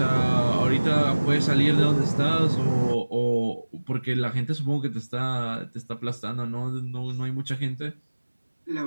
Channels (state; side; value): inverted; both; correlation -1.00